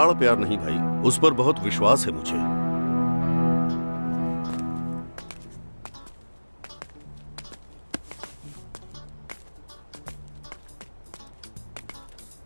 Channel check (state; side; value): inverted; both; correlation -1.00